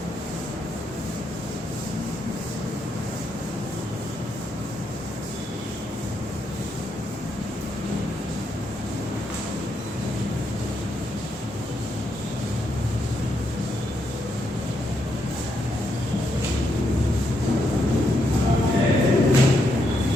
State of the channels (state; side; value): normal; both; correlation 0.79